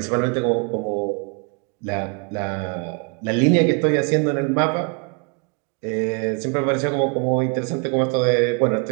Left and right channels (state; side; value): quieter; left; 35.5 dB